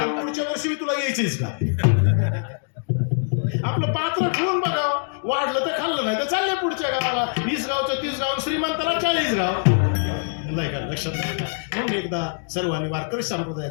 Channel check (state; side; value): silent; right; 63 dB below the other